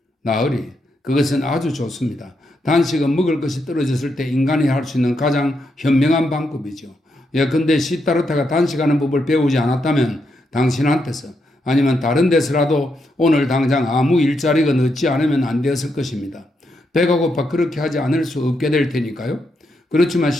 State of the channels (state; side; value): normal; both; correlation 0.81